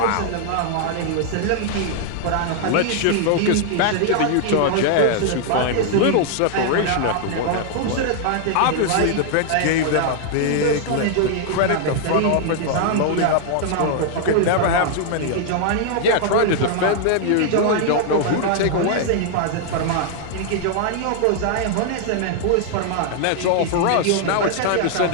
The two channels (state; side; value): different; both; correlation 0.00